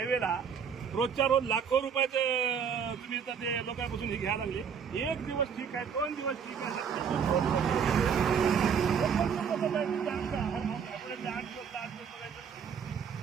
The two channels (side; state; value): left; quieter; 7.0 dB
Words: रोजच्या रोज लाखो रुपयाचं तुम्ही इथं ते लोकांपासून हे घ्यायला लागले. एक दिवस ठीक आहे, 2 दिवस ठीक आहे,